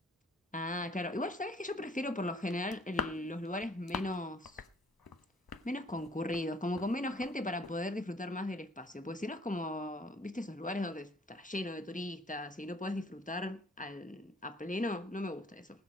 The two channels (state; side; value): normal; both; correlation 0.58